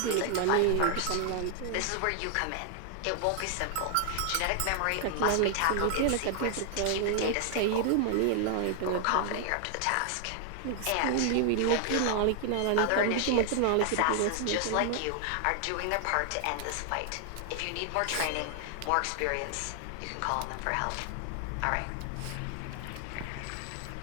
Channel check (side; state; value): both; different; correlation 0.00